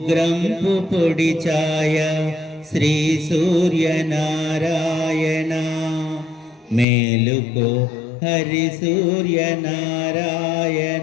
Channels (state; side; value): drops out; right; at 6.9 s